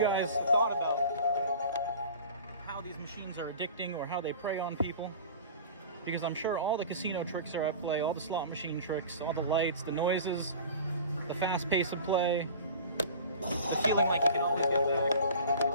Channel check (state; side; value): inverted; both; correlation -0.40